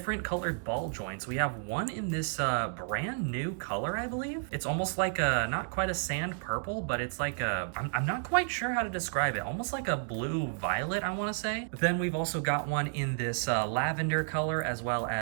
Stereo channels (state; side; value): silent; left; digital silence